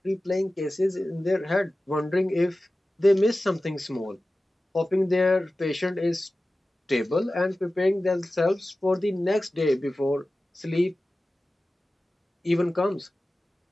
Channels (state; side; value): normal; both; correlation 0.96